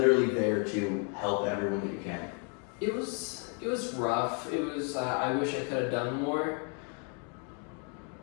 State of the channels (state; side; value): quieter; right; 39.6 dB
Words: there to help everyone that you can? It was rough. It was, I wish I could have done more.